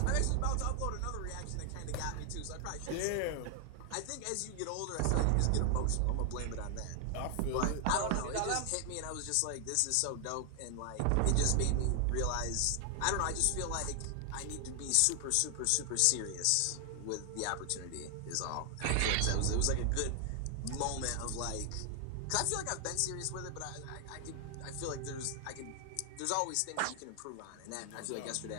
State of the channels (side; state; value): both; different; correlation 0.00